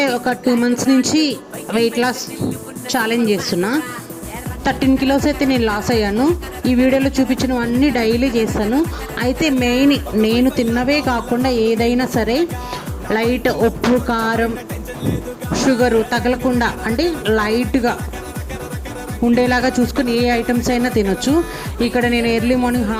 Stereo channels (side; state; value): both; identical; correlation 1.00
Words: ఒక 2 months నుంచి వెయిట్ లాస్ ఛాలెంజ్ చేస్తున్నా. 13 kilos అయితే నేను లాస్ అయ్యాను. ఈ వీడియోలో చూపించినవన్నీ డైలీ చేస్తాను. అయితే మెయిన్ నేను తిన్నవే కాకుండా ఏదైనా సరే లైట్ ఉప్పు కారం షుగరు తగలకుండా అంటే లైట్గా ఉండేలాగా చూసుకొని ఏ ఐటమ్స్ అయినా తినొచ్చు. ఇక్కడ నేను ఎర్లీ మార్నింగ్